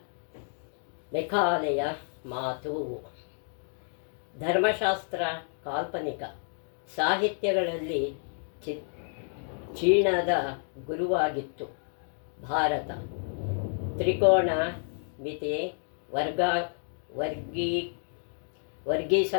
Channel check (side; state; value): right; silent; 58 dB below the other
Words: ಮೆಕಾಲೆಯ ಮಾತು. ಧರ್ಮಶಾಸ್ತ್ರ ಕಾಲ್ಪನಿಕ ಸಾಹಿತ್ಯಗಳಲ್ಲಿ ಚೀನಾದ ಗುರುವಾಗಿತ್ತು. ಭಾರತ ತ್ರಿಕೋಣ ಮಿತಿ, ವರ್ಗೀ